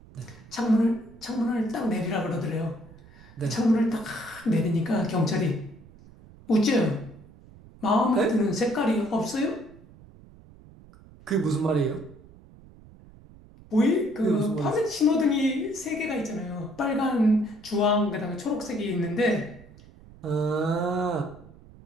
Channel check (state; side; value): noise; right; rumble, 22 dB below the sound